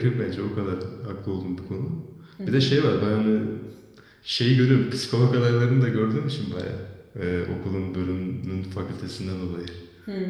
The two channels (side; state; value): both; identical; correlation 1.00